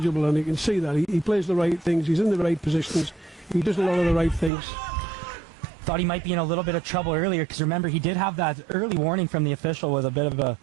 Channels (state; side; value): drops out; left; at 4.5 s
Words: and you can see that he plays the right things. He's in the right positions. He does a lot of the right things. Thought he might be in a little bit of trouble earlier, because remember, he did have that early warning from the official with a bit of a